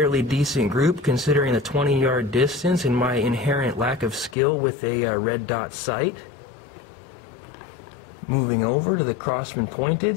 decent group considering the 20-yard distance and my inherent lack of skill with a red dot sight. Moving over to the Crosman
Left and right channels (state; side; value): drops out; right; at 4.4 s